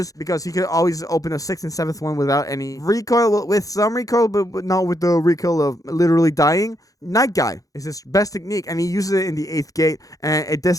because he could always open the 6th and 7th one without any recoil, with some recoil, but not with the recoil of literally dying. Night Guy is his best technique, and he uses it in the 8th gate, and it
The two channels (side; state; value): right; late; 0.17 ms